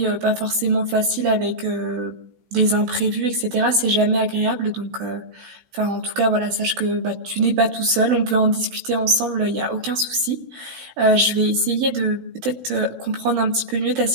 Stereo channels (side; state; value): left; late; 16 ms